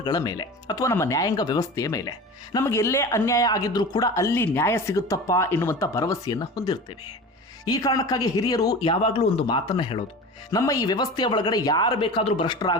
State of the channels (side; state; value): both; normal; correlation 0.33